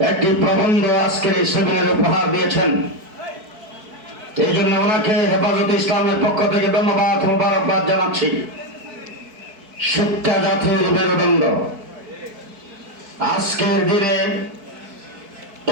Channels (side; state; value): left; late; 4.6 ms